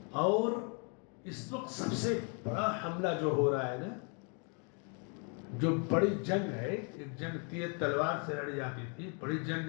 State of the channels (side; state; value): right; quieter; 37.8 dB